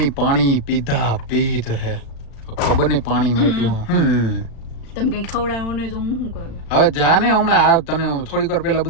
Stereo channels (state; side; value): late; right; 35 ms